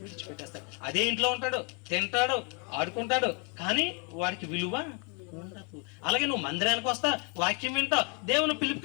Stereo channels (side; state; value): right; quieter; 34.7 dB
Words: విడిచిపెట్టేస్తాడు. అదే ఇంట్లో ఉంటాడు, తింటాడు, ఆడుకుంటాడు, కానీ వాడికి విలువ ఉండదు. అలాగే నువ్వు మందిరానికి వస్తా, వాక్యం వింటావు, దేవుని